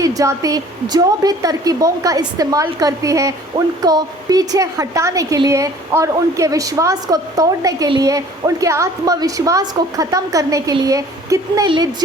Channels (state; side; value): normal; both; correlation 0.51